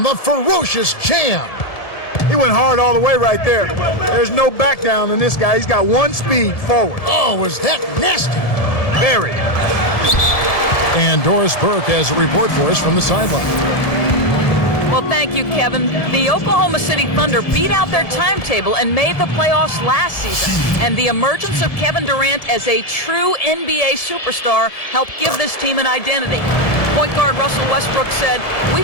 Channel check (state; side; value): late; right; 1.7 ms